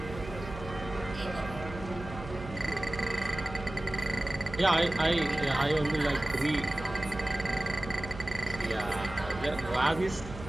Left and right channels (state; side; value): noise; right; hum, 12 dB below the sound